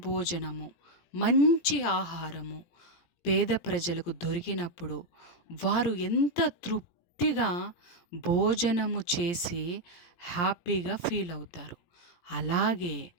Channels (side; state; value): right; late; 17 ms